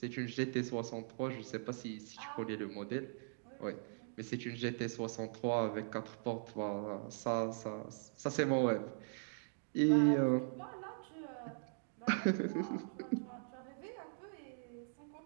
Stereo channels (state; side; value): silent; left; digital silence